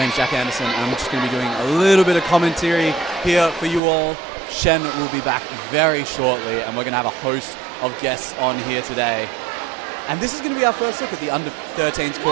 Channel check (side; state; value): left; drops out; at 3.8 s